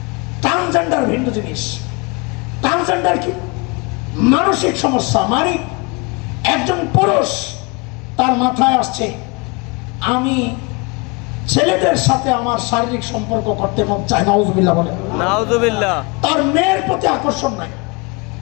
ট্রান্সজেন্ডার ভিন্ন জিনিস। ট্রান্সজেন্ডার কি? মানসিক সমস্যা। মানে একজন পুরুষ, তার মাথায় আসছে আমি ছেলেদের সাথে আমার শারীরিক সম্পর্ক করতে মন চায়, নাউজুবিল্লাহ বলে, নাউজুবিল্লাহ। তার মেয়ের প্রতি আকর্ষণ নাই,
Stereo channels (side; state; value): right; quieter; 29.1 dB